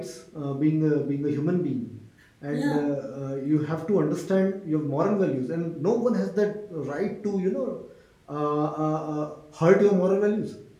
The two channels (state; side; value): identical; both; correlation 1.00